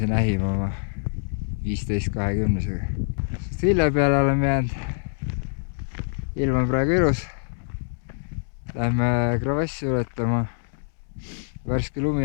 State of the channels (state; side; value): silent; right; 62 dB below the other